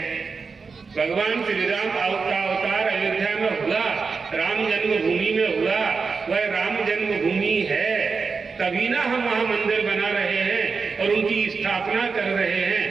भगवान श्री राम का अवतार अयोध्या में हुआ, राम जन्मभूमि में हुआ। वह राम जन्मभूमि है, तभी ना हम वहां मंदिर बना रहे हैं और उनकी स्थापना कर रहे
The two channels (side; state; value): left; quieter; 4.9 dB